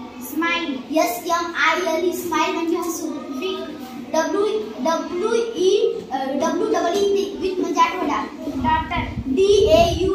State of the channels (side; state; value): both; identical; correlation 1.00